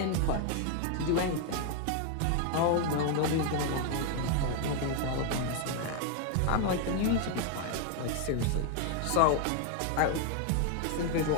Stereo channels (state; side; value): different; both; correlation 0.01